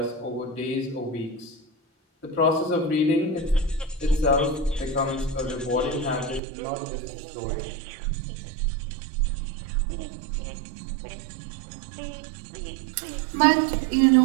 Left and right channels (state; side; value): drops out; left; at 6.4 s